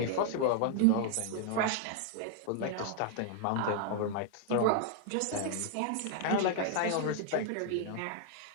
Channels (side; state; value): both; different; correlation 0.00